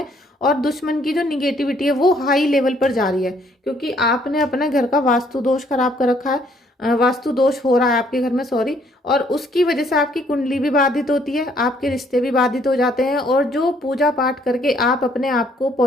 और दुश्मन की जो निगेटिविटी है वो हाई लेवल पर जा रही है, क्योंकि आपने अपने घर का वास्तु दोष खराब कर रखा है, वास्तु दोष हो रहा है आपके घर में, सॉरी, और उसकी वजह से आपकी कुंडली भी बाधित होती है, आपके रिश्ते भी बाधित हो जाते हैं, और जो पूजा पाठ करके आप अपने आप को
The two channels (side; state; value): both; normal; correlation 0.65